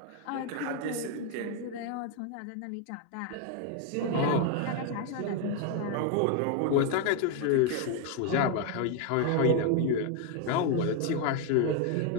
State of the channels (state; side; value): different; both; correlation 0.01